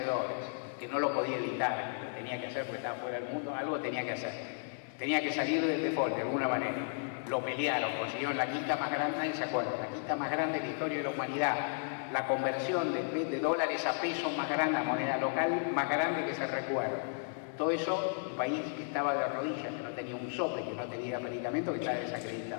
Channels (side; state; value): right; silent; 55 dB below the other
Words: que no lo podía evitar, que lo tenía que hacer porque estaba fuera del mundo, algo tenía que hacer. Tenía que salir del default de alguna manera. Lo pelearon, consiguieron la quita más grande, nadie se acuerda, la quita más grande de la historia de la humanidad, la conversión de dólares a pesos más grande, a moneda local más grande que se recuerda. Todo eso, un país que estaba de rodillas, que no tenía un sope, que no tenía medicamento, que estaba